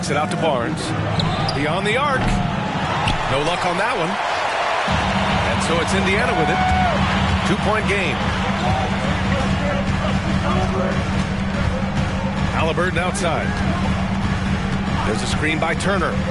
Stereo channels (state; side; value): identical; both; correlation 1.00